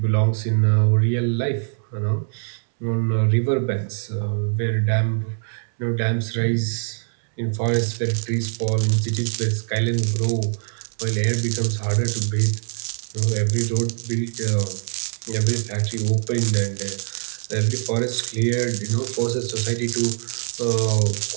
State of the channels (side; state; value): left; silent; digital silence